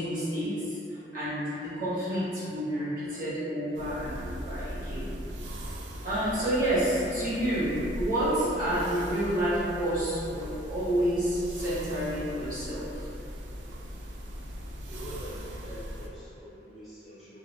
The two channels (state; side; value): normal; both; correlation 0.51